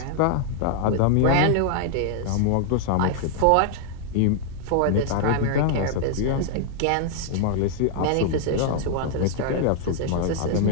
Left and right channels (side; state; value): both; different; correlation -0.01